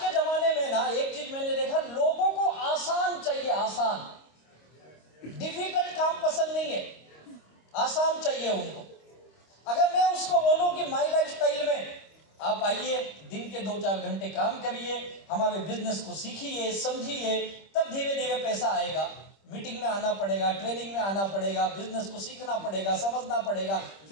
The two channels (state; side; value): late; right; 25 ms